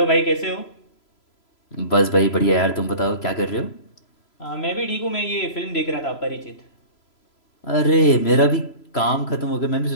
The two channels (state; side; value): late; right; 3.0 ms